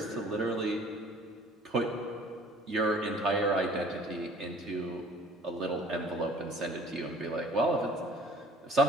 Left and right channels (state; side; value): normal; both; correlation 0.52